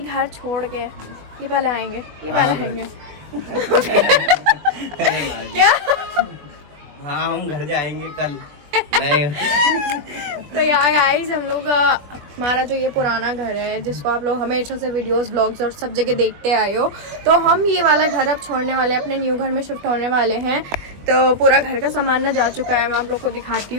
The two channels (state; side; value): late; left; 20 ms